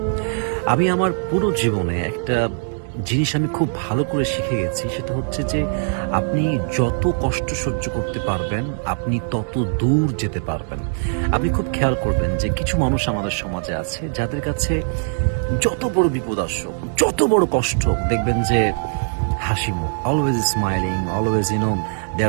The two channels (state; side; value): silent; left; digital silence